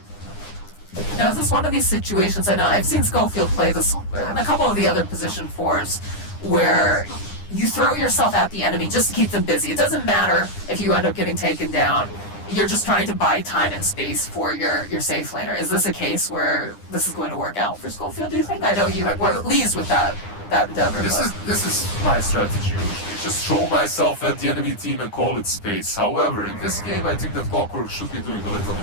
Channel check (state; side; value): late; right; 9.9 ms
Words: Now, is this one of these situations, I know I've seen Schofield play this in a couple of the other position 4s, where you throw yourself at the enemy just to keep them busy. It doesn't matter if you end up getting taken down. You're just trying to buy time and space for your safe laner. Is this a case where this is going to work out for Schofield, do you think? I know you were pleased with that endeavor. This is my strategy usually. Just throw myself at the enemy team and call it space. However, in this game I think that Clockwork should be doing a little